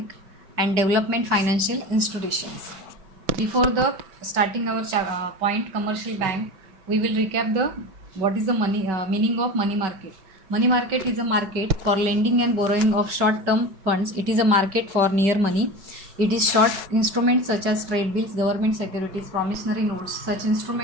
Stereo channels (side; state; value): left; late; 5.3 ms